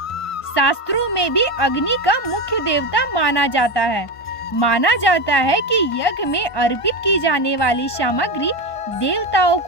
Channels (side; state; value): right; late; 1.1 ms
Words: शास्त्रों में भी अग्नि का मुख्य देवता माना जाता है। माना जाता है कि यज्ञ में अर्पित की जाने वाली सामग्री देवताओं